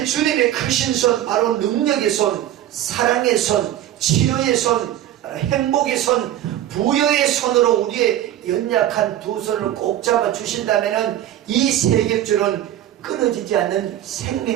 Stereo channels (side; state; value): left; quieter; 12.3 dB